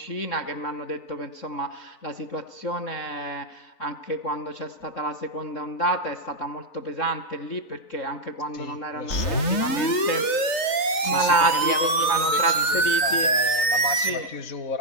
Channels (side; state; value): right; late; 3.9 ms